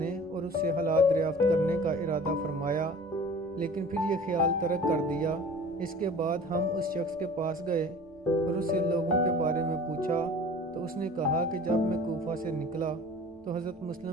اور اس سے حالات دریافت کرنے کا ارادہ فرمایا، لیکن پھر یہ خیال ترک کر دیا۔ اس کے بعد ہم اس شخص کے پاس گئے اور اس سے لوگوں کے بارے میں پوچھا تو اس نے کہا کہ جب میں کوفہ سے نکلا تو حضرت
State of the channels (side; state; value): both; normal; correlation 0.43